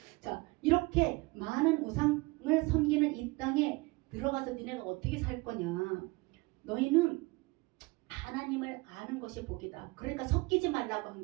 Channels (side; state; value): left; quieter; 24.2 dB